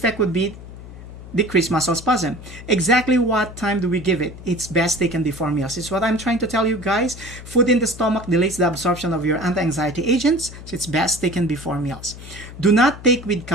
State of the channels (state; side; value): noise; left; hum, 15 dB below the sound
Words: would be decrease muscle spasm. Exactly what time do we give it? It's best taken before meals. It's what I'm trying to tell you guys. Food in the stomach delays the absorption of your anti-anxiety agents, so it's best taken before meals. Do not take with